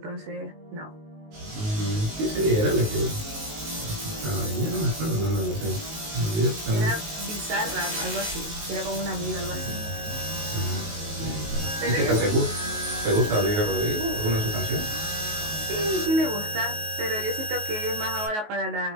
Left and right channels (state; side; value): late; left; 19 ms